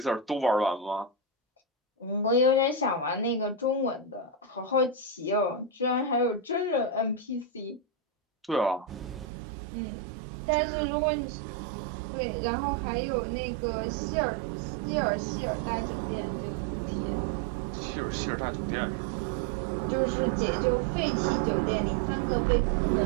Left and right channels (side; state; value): left; drops out; at 9.2 s